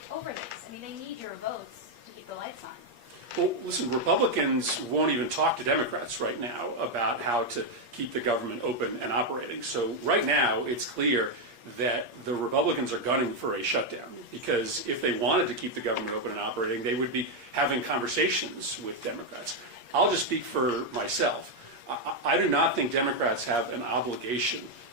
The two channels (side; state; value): left; late; 8.5 ms